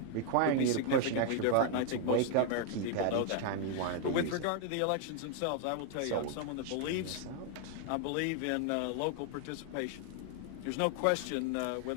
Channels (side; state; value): both; different; correlation 0.00